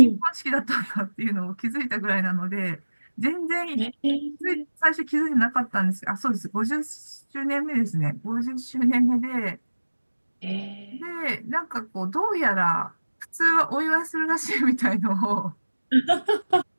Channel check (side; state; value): both; inverted; correlation -1.00